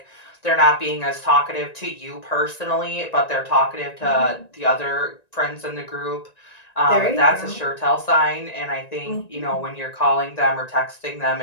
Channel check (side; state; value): right; late; 1.9 ms